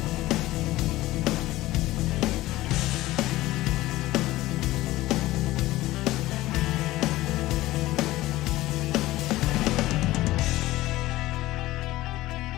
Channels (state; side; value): quieter; right; 17.1 dB